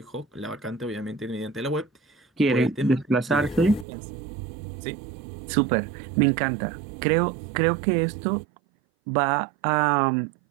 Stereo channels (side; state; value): left; drops out; at 3.9 s